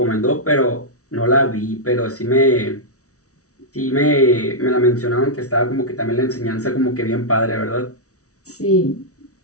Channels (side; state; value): right; late; 0.66 ms